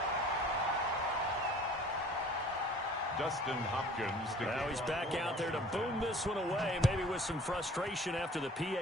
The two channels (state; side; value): normal; both; correlation 0.49